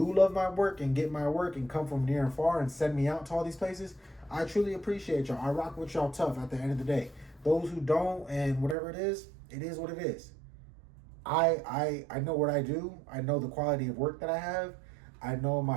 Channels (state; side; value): drops out; left; at 8.8 s